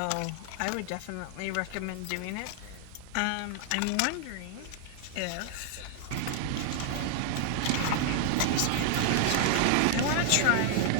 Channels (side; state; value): both; different; correlation 0.00